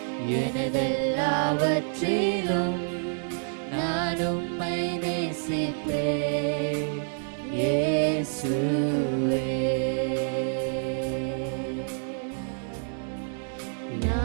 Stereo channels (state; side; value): silent; left; digital silence